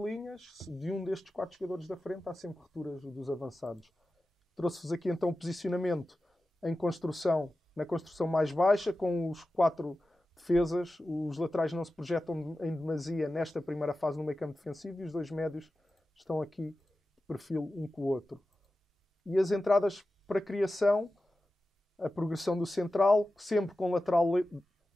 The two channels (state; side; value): normal; both; correlation 0.94